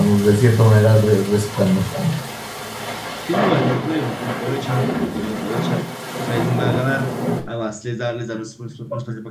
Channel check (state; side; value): identical; both; correlation 1.00